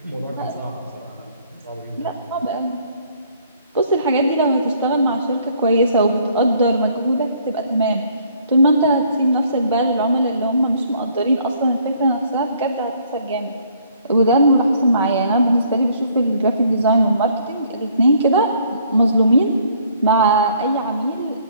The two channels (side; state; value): both; inverted; correlation -0.62